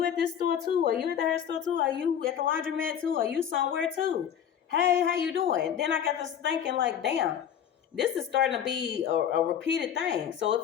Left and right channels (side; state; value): right; quieter; 9.0 dB